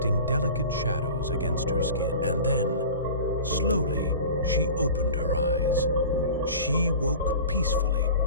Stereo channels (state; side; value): inverted; both; correlation -0.37